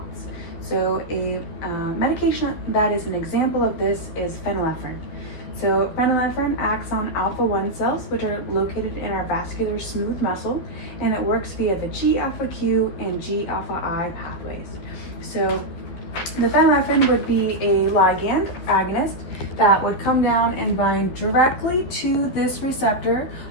So a medication that is an example of this is phenylephrine. So phenylephrine acts on alpha-1 cells, which are located in our vascular smooth muscle, and it works via the G-alpha-Q and G-alpha-I pathways. So the phenylephrine would be a ligand agonist that would come down and bind directly to this receptor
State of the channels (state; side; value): late; right; 12 ms